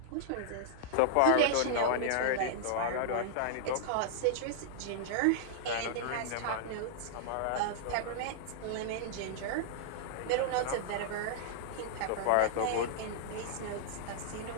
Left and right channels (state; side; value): different; both; correlation -0.01